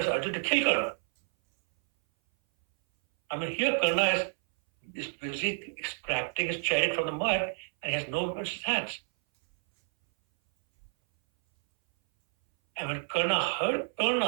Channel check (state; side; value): silent; left; 58 dB below the other